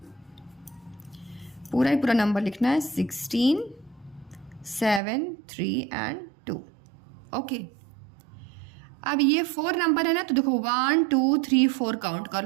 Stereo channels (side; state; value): left; drops out; at 5.0 s